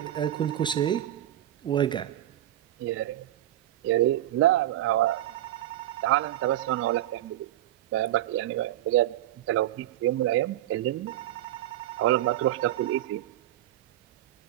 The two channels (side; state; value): left; quieter; 13.5 dB